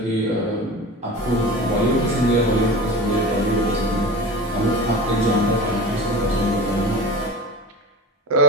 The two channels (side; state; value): both; normal; correlation 0.31